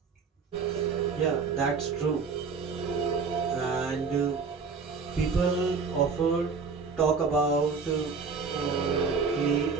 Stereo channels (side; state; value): left; quieter; 5.0 dB